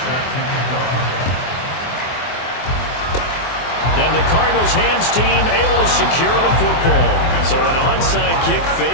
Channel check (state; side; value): late; right; 24 ms